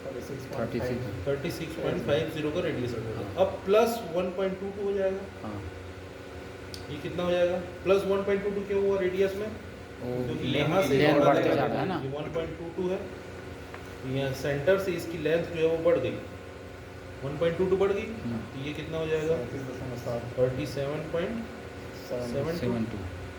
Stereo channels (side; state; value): both; identical; correlation 1.00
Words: 36.50 का रेडियस रखे थे। अब प्लस 1.22 हो जाएगा। हाँ ये कितना हो जाएगा? प्लस 1.22 क्यों हुआ रेडियस में? क्योंकि यहाँ से लेंथ बढ़ा बढ़ते देगा, जा रहा है ना। ये 1.22 है, यहाँ सेंटर से इसकी लेंथ जो है वो बढ़ गई, 1.22 बढ़ गई, तो ये कितना हो जाएगा? 37.72। 72।